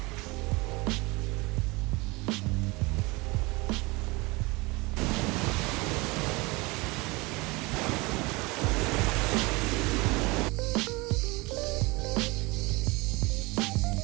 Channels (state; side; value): quieter; left; 24.5 dB